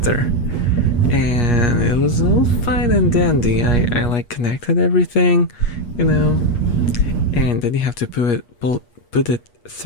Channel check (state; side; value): late; right; 8.4 ms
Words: and it was all fine and dandy. I like connected everything, and then you have to put it